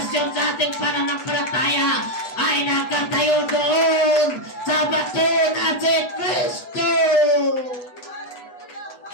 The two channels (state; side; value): late; right; 8.1 ms